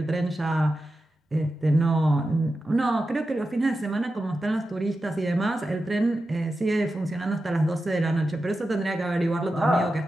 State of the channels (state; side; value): normal; both; correlation 0.91